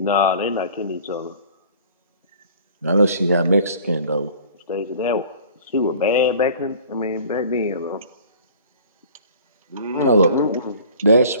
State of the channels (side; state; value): both; inverted; correlation -0.47